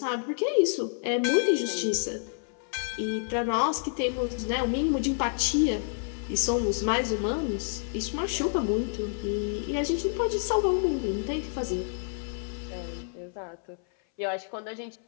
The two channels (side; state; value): right; silent; 59 dB below the other